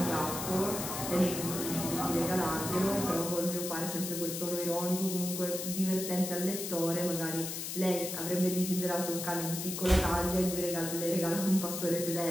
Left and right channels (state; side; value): noise; left; hiss, 5 dB below the sound